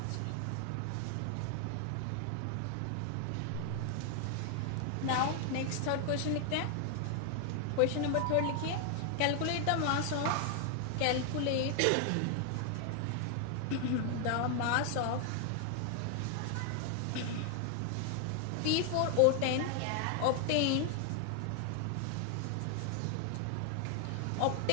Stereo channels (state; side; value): different; both; correlation 0.00